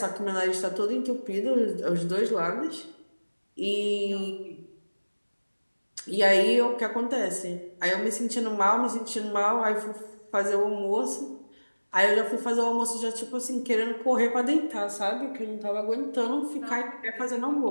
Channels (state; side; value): inverted; both; correlation -1.00